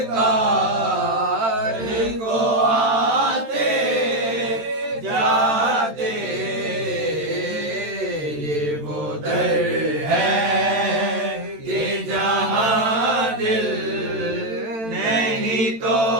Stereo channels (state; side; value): late; left; 13 ms